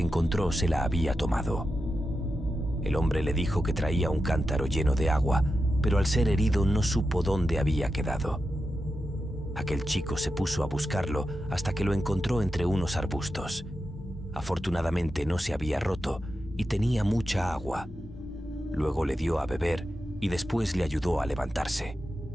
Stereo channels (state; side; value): normal; both; correlation 0.89